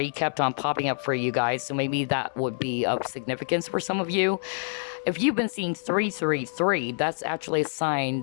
kept on popping up for you guys, so maybe that would be of significance for some of you. If you've been seeing 333, that's actually a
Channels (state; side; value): silent; right; digital silence